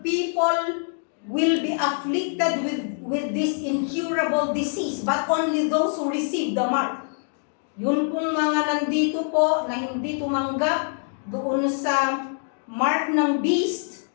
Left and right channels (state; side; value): silent; right; 62 dB below the other